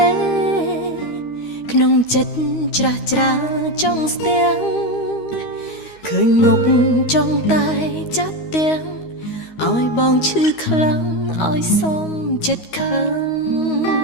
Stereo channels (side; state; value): right; late; 13 ms